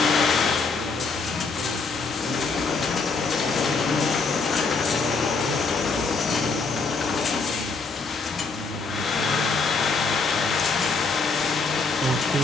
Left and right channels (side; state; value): right; quieter; 4.3 dB